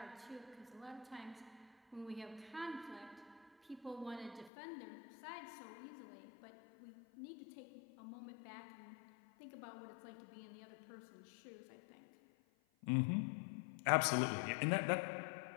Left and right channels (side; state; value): right; drops out; at 4.5 s